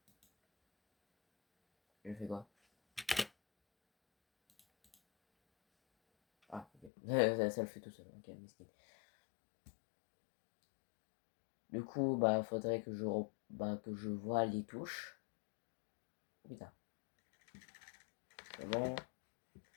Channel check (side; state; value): right; drops out; at 6.9 s